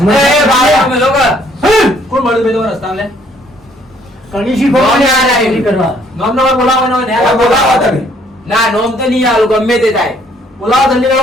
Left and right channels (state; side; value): normal; both; correlation 0.64